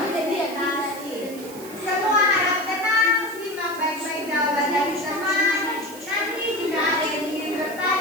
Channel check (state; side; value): noise; right; hiss, 16 dB below the sound